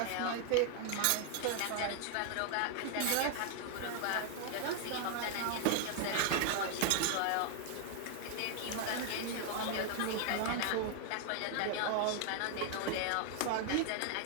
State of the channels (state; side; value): different; both; correlation 0.00